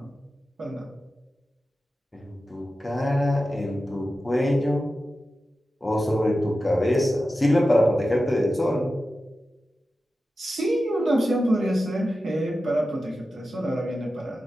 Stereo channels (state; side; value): normal; both; correlation 0.93